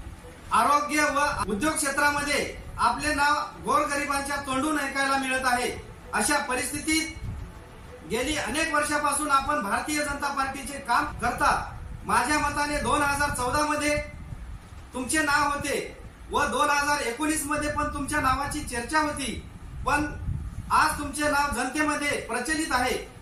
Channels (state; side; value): identical; both; correlation 1.00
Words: आरोग्य व उद्योग क्षेत्रामध्ये आपले नाव गोरगरिबांच्या तोंडून ऐकायला मिळत आहे। अशा परिस्थितीत गेली अनेक वर्षापासून आपण भारतीय जनता पार्टीचे काम करता। माझ्या मताने 2014 मध्ये तुमचे नाव होते व 2019 मध्ये पण तुमच्या नावाची चर्चा होती, पण आज तुमचे नाव जनतेमध्ये प्रचलित आहे